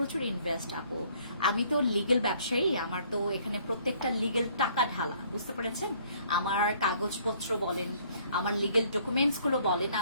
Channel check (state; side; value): inverted; both; correlation -0.61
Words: ইনভেস্ট আপু। আমি তো লিগেল ব্যবসায়ী, আমার তো এখানে প্রত্যেকটা লিগেল টাকা ঢালা, বুঝতে পেরেছেন? আমার কাগজপত্র বলেন, আমার লিগেল ডকুমেন্টস গুলো বলেন,